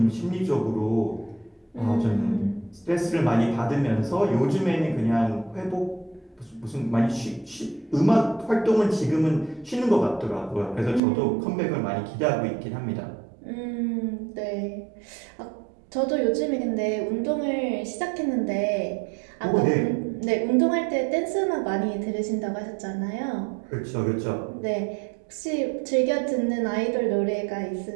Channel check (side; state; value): left; drops out; at 11.0 s